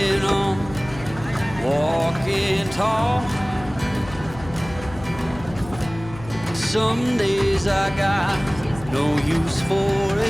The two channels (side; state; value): left; noise; hum, 15 dB below the sound